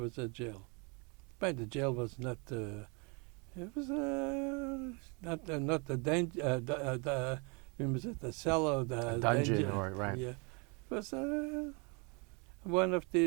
was a jail. But the jail was not... it was not the danger. Was it the cellar? The dungeon, danger. or right? Yeah, it was one of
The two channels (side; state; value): left; quieter; 32.2 dB